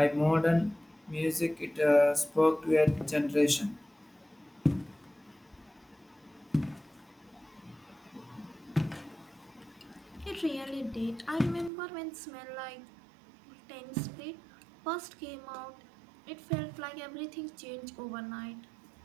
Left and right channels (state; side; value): drops out; left; at 11.7 s